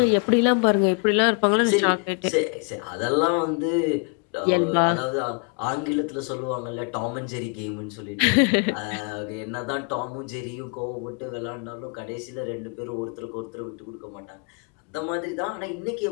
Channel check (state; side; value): quieter; right; 37.1 dB